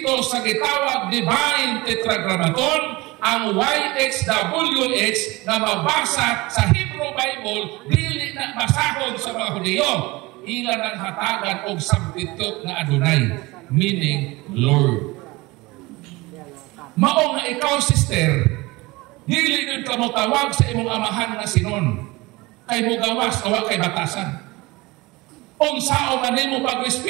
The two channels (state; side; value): quieter; left; 22.1 dB